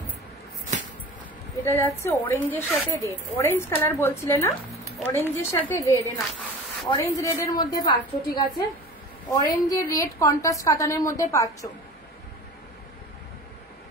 এটা যাচ্ছে অরেঞ্জের সাথে রেড, অরেঞ্জ কালার বলছিলে না, অরেঞ্জের সাথে রেড, না অরেঞ্জ রেডের মধ্যে পাচ্ছ, ঠিক আছে, অরেঞ্জের রেড কন্ট্রাস্ট কাতানের মধ্যে পাচ্ছ,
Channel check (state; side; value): normal; both; correlation 0.37